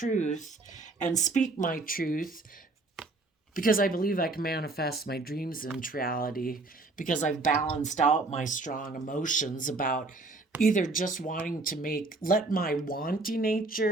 and speak my truth, because I believe I can manifest my dreams into reality, because I've balanced out my strong emotions about either just wanting to let my wanty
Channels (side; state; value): left; quieter; 3.3 dB